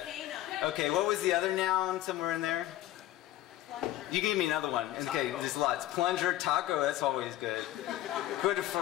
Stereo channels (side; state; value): right; quieter; 14.6 dB